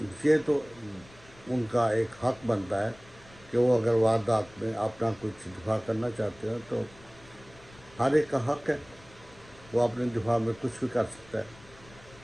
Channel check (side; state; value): left; noise; rumble, 23 dB below the sound